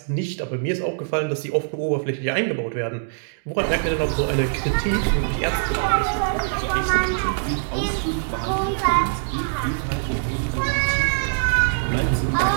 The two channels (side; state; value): left; silent; digital silence